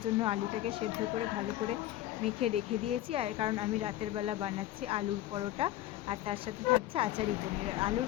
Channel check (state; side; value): quieter; right; 14.0 dB